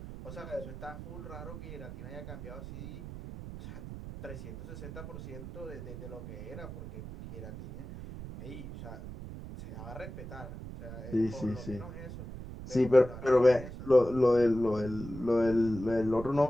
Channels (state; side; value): noise; right; rumble, 11 dB below the sound